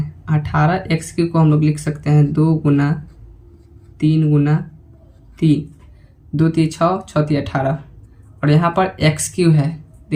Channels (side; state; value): both; identical; correlation 1.00